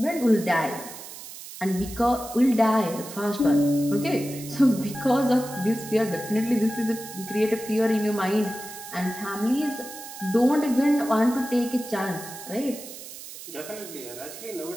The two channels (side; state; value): right; noise; hiss, 13 dB below the sound